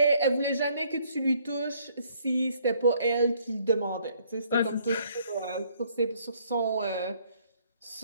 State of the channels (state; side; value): inverted; both; correlation -0.64